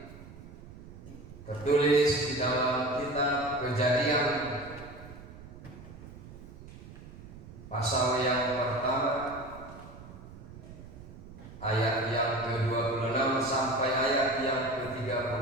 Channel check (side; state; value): right; noise; rumble, 16 dB below the sound